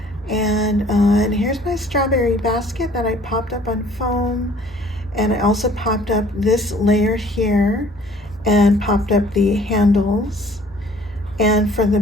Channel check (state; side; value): normal; both; correlation 0.55